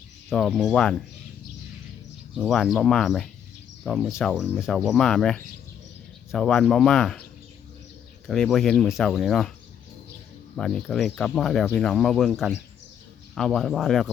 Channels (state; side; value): quieter; right; 8.9 dB